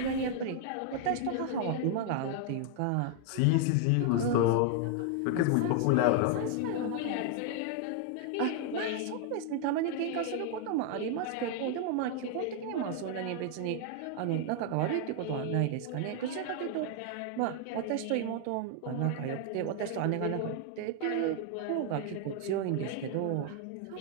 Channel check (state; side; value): different; both; correlation 0.00